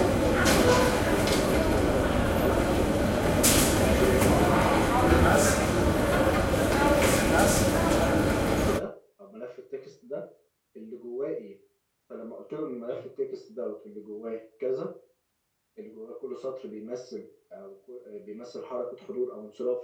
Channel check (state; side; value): identical; both; correlation 1.00